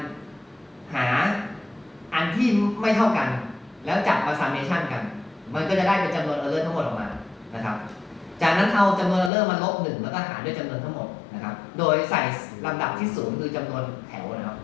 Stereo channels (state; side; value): drops out; right; at 9.3 s